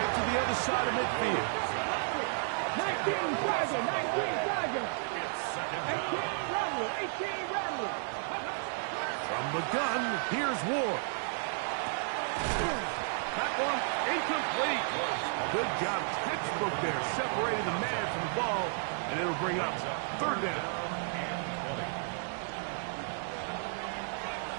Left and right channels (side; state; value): left; silent; digital silence